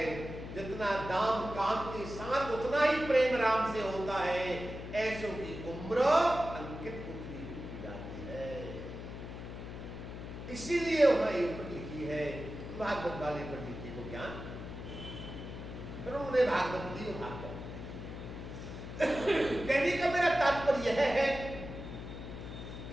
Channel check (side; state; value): left; noise; hum, 9 dB below the sound